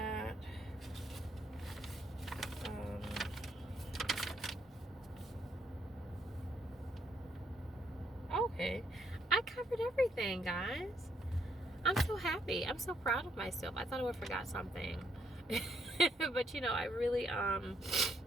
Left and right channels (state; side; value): normal; both; correlation 0.73